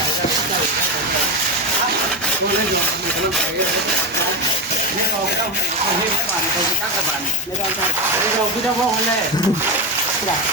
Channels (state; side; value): normal; both; correlation 0.12